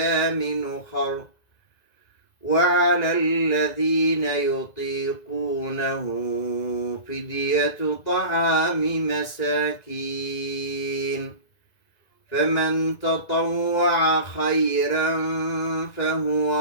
أخر وعلى الذين يطيقونه فدية طعام مساكين فمن تطوع خيرا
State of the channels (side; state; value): right; late; 1.9 ms